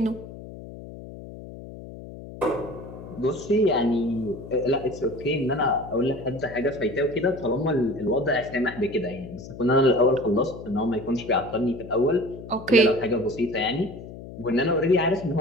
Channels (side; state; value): left; noise; hum, 14 dB below the sound